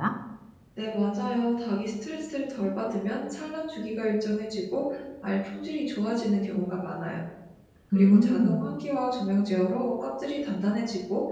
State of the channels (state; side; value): identical; both; correlation 1.00